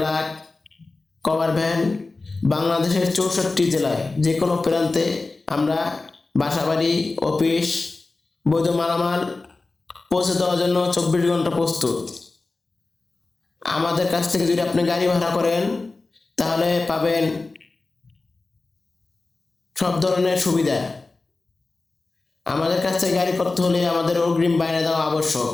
cover van. বাংলাদেশের 64 জেলায় যে কোনো প্রান্তে আমরা বাসাবাড়ি, অফিস, বৈধ মালামাল পৌঁছে দেওয়ার জন্য 24 ঘন্টা প্রস্তুত। আমাদের কাছ থেকে যদি আপনি গাড়ি ভাড়া করেন তাহলে পাবেন সব ধরনের সুবিধা। আমাদের কাছ থেকে গাড়ি করতে হলে আমাদের অগ্রিম বায়না দেওয়া আবশ্যক।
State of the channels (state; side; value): quieter; right; 3.5 dB